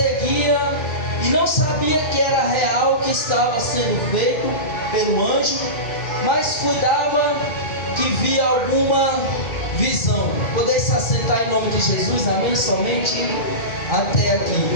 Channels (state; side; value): late; right; 2.5 ms